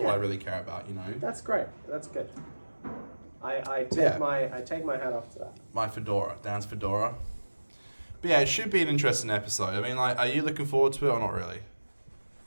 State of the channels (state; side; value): inverted; both; correlation -1.00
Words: I really care about. That's great. That's good. I take my hat off to that. My fedora, Dan's fedora. But yeah, it should be an interesting episode. I mean, like, are you looking forward to it or not really?